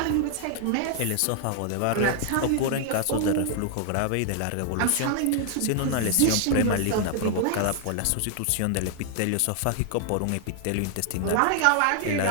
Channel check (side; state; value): both; different; correlation 0.00